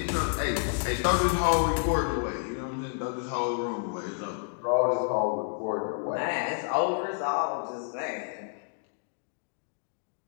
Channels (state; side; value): silent; right; digital silence